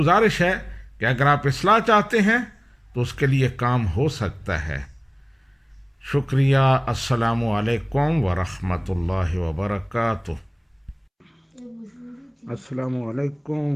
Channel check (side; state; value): both; identical; correlation 1.00